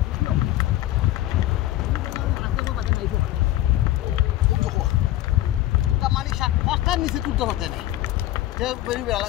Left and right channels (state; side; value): quieter; right; 14.6 dB